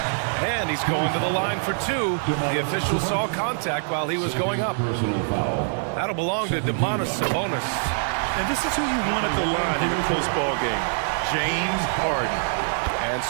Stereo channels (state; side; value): silent; left; 62 dB below the other